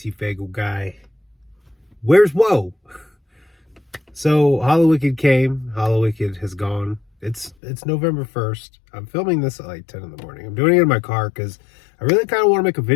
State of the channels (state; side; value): drops out; right; at 7.6 s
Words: Where's WOH? So Hollow came. Hollow has gone. It's November 1st. I'm filming this at like 10 in the morning. I'm doing it in my car because I really kind of want to make a